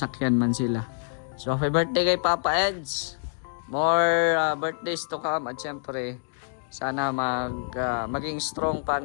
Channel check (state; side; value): silent; right; digital silence